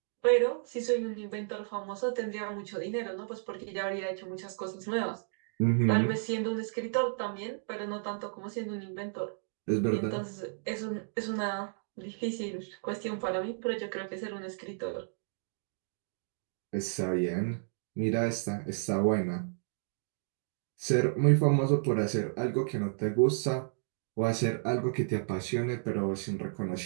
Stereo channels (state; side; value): silent; left; digital silence